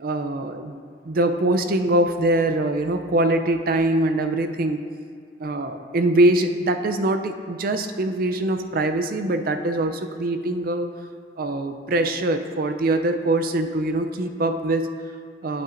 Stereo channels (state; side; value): normal; both; correlation 0.36